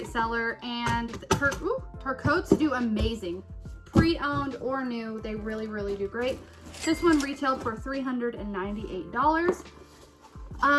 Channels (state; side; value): identical; both; correlation 1.00